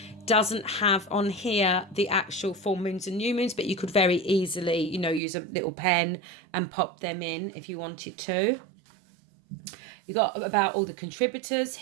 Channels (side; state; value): left; drops out; at 5.2 s